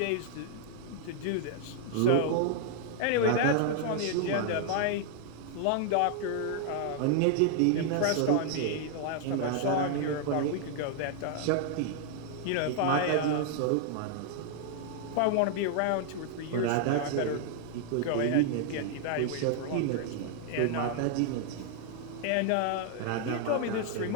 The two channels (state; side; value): different; both; correlation 0.00